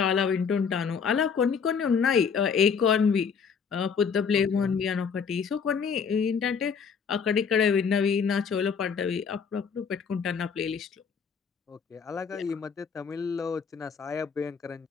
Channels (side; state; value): right; quieter; 6.2 dB